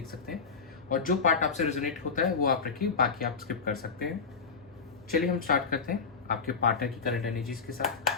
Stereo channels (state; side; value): quieter; right; 5.3 dB